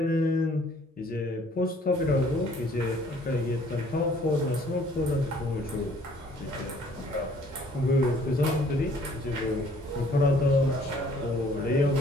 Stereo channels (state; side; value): normal; both; correlation 0.58